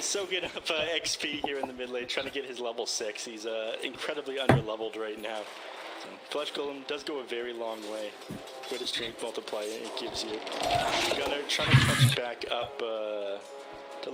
Soaking up XP here in the mid lane, trying to get his level 6. He's incredibly under-leveled right now. So, Flesh Golem does go a very long way. With a strength multiplier it gives you. Gunner trying to catch back up to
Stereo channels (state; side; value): identical; both; correlation 1.00